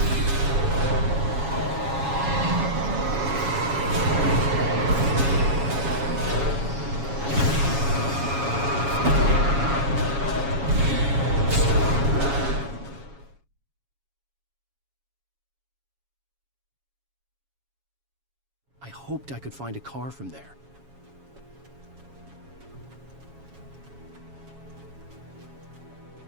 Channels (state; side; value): late; left; 7.2 ms